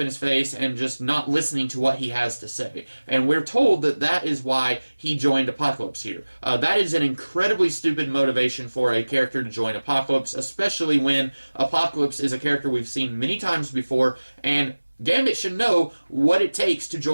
in his face and just not listening to what he has to say. And we're told that that is why he joined Apocalypse here. That is an incredibly stupid motivation for a character to join Apocalypse, especially when Apocalypse is a character we've seen many times before, and Gambit should know what it takes to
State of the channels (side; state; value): both; inverted; correlation -1.00